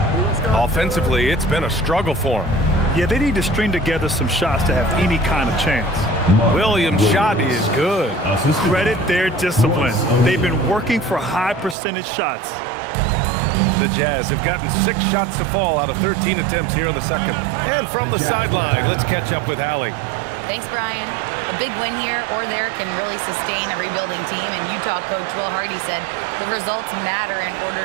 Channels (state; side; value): drops out; left; at 11.8 s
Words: Offensively, it's been a struggle for him. Yeah, they need to string together some shots to have any kind of chance. Williams' shot is good. Credit their discipline. They've been working for high percentage shots. The Jazz have gotten 6 shots to fall out of 13 attempts here in the second. And from the sideline, let's catch up with Allie. Thanks, Brian. A big win here or there can really sustain a rebuilding team, and Utah coach Will Hardy said the results matter in